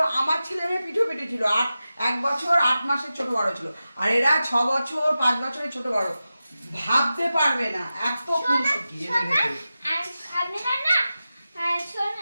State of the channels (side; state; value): both; inverted; correlation -0.93